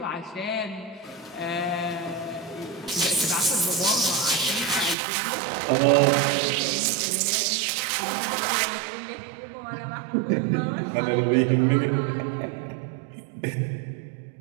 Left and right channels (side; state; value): left; drops out; at 5.0 s